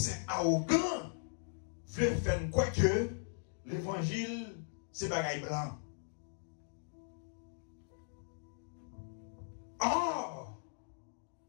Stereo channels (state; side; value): silent; right; digital silence